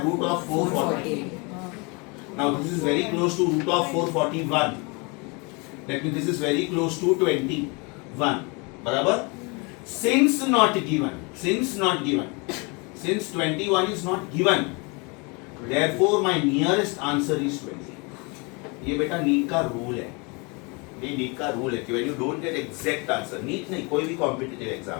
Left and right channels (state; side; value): quieter; right; 30.0 dB